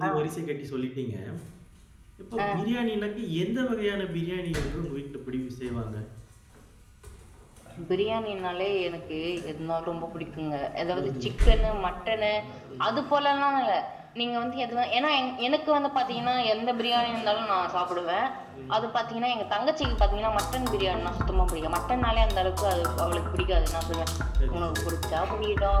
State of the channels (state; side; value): identical; both; correlation 1.00